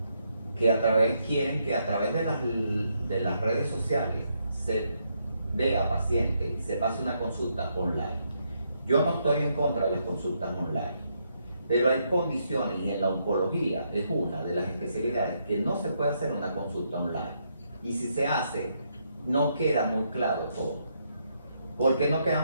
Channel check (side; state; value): both; inverted; correlation -0.77